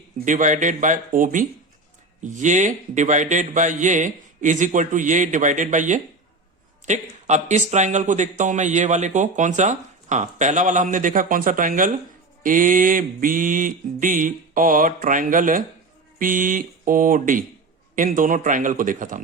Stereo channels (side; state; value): left; quieter; 3.2 dB